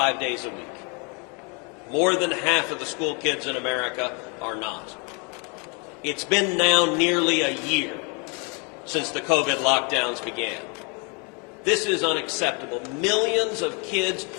days a week. More than half of the school kids in America are not. It's been now nearly a year since the COVID lockdowns began. This is unacceptable. Millions of kids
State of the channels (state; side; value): quieter; right; 33.6 dB